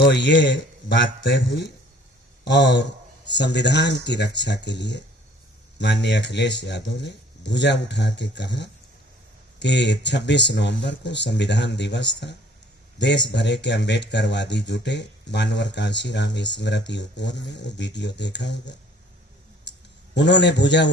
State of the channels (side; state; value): both; normal; correlation 0.55